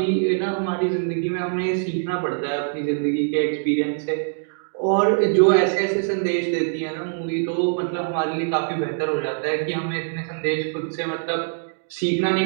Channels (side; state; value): left; silent; digital silence